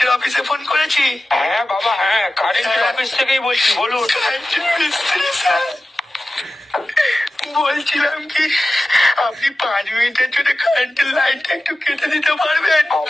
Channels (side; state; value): both; normal; correlation 0.94